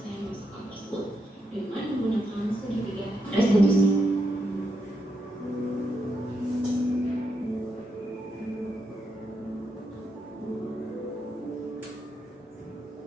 masalah tersebut dengan menggunakan segitiga restitusi.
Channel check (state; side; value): normal; both; correlation 0.83